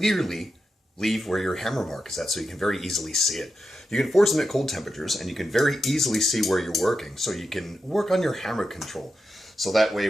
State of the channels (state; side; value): normal; both; correlation 0.88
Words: leave where your hammer mark is at, so you can very easily see it. You can forge them at cold temperatures, and you can very easily see where you're working, so you can work on your hammer control. So that way,